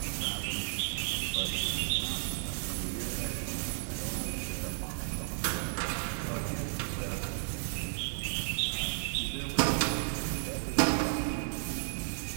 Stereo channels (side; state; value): left; silent; digital silence